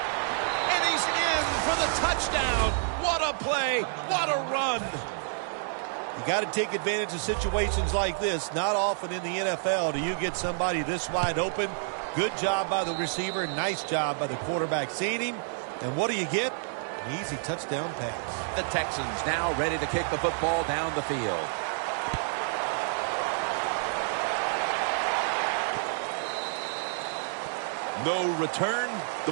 and he's in for the touchdown. What a play. What a run. You got to take advantage of situations like this. Not often in the NFL do you get somebody this wide open. Good job by the receiver. Nice job by the quarterback seeing him. And what do you get? An easy touchdown pass. The Texans now ready to kick the football down the field. No return.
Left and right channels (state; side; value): silent; left; digital silence